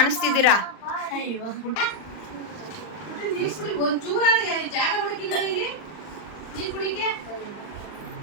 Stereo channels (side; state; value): right; late; 39 ms